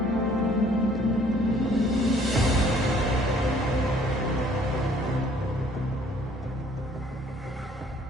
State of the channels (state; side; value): normal; both; correlation 0.59